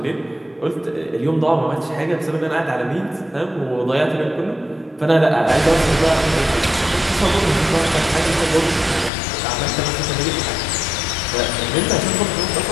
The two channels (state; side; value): drops out; right; at 9.1 s